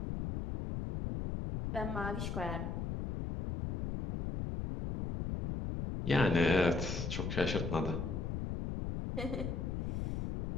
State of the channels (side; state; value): left; noise; rumble, 3 dB below the sound